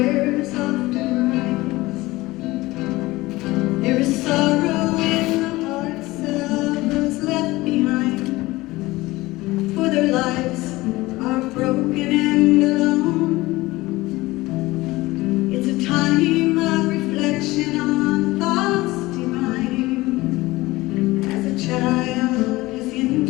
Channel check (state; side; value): quieter; right; 19.6 dB